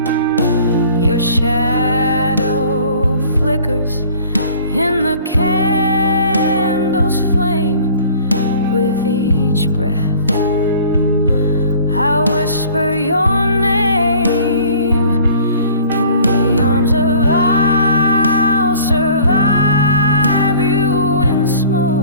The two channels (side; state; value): both; inverted; correlation -0.49